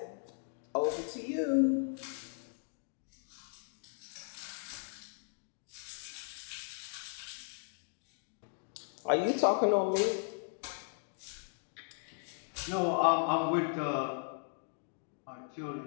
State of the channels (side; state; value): right; silent; 53 dB below the other